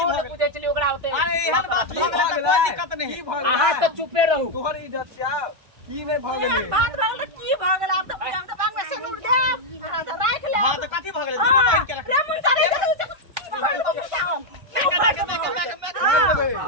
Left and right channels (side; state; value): left; late; 1.5 ms